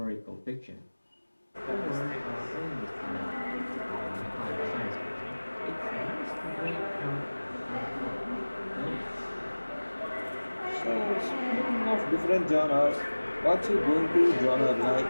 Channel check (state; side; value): inverted; both; correlation -1.00